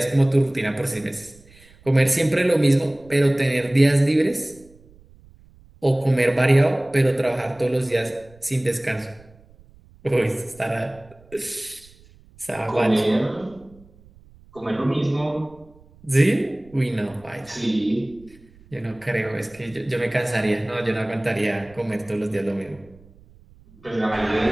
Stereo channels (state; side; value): noise; right; rumble, 26 dB below the sound